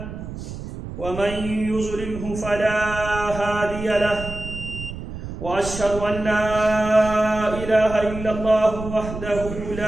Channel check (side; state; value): right; noise; rumble, 9 dB below the sound